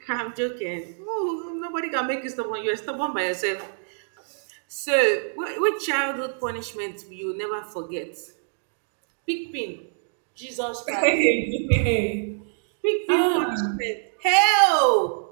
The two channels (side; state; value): left; silent; digital silence